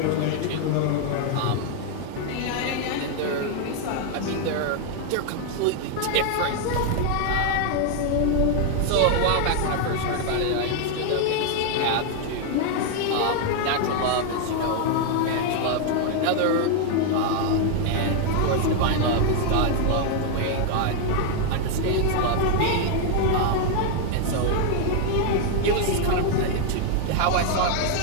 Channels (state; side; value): different; both; correlation 0.00